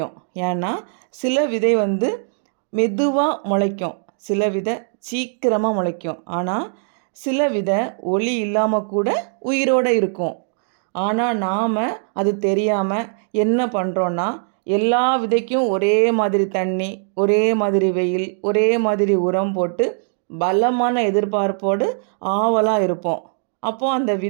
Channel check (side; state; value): left; silent; digital silence